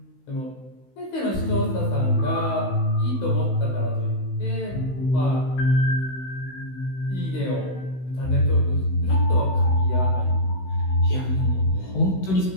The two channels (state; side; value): late; right; 16 ms